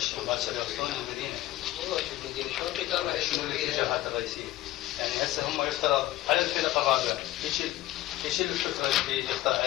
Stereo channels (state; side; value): quieter; right; 15.6 dB